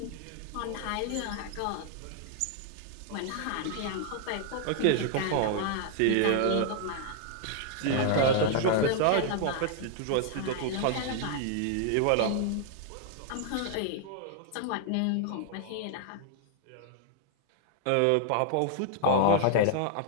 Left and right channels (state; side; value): different; both; correlation 0.00